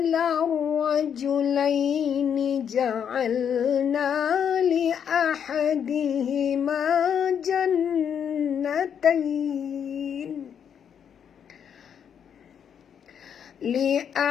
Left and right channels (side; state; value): right; quieter; 8.1 dB